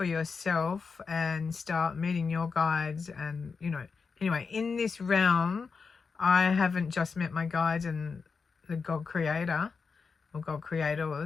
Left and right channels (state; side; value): quieter; right; 5.1 dB